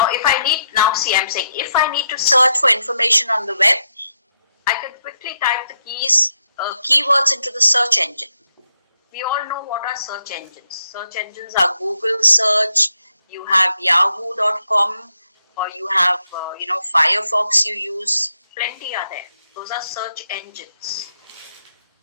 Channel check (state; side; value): inverted; both; correlation -0.81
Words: I'm saying, if I need to search for information on the web, I can quickly type the keywords into the search engine. We all know what are search engines. Search engines are Google search, you have yahoo.com, or you have, Firefox you use. Plenty are there. Those are search engines.